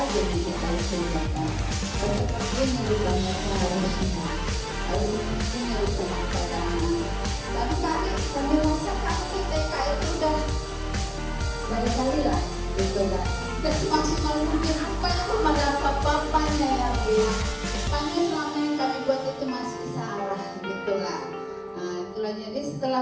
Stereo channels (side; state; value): both; identical; correlation 1.00